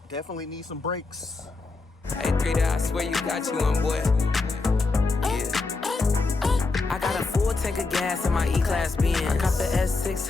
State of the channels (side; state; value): right; quieter; 3.8 dB